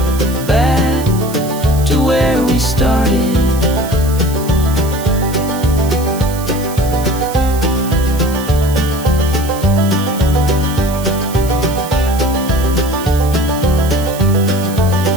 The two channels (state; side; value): noise; right; hiss, 14 dB below the sound